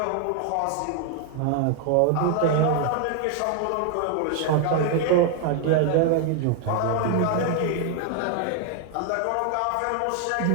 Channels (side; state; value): both; different; correlation 0.00